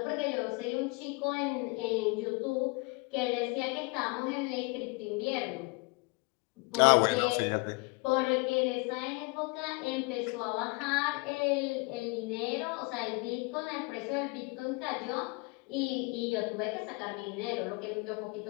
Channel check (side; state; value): right; quieter; 28.6 dB